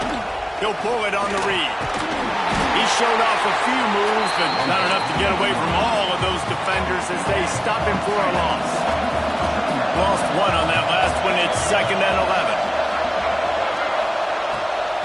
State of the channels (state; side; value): identical; both; correlation 1.00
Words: He'll pull it on the read. He showed off a few moves, but not enough to get away from all of those defenders as they stop him for a loss. Lost 1 on that last one. It's 2nd and 11.